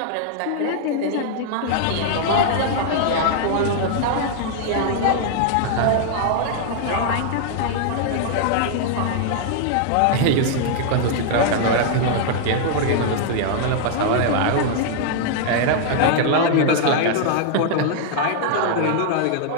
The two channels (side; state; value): both; different; correlation -0.01